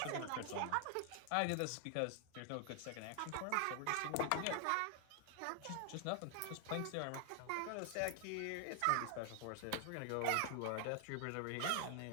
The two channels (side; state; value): both; different; correlation 0.00